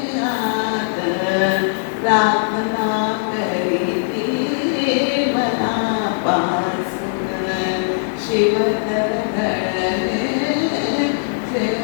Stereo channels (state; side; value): silent; right; digital silence